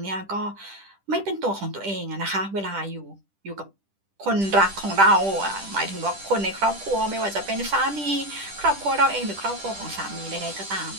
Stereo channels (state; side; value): late; left; 10 ms